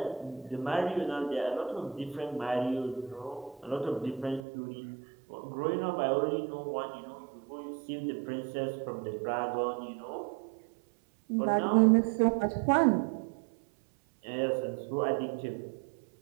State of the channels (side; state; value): left; drops out; at 4.4 s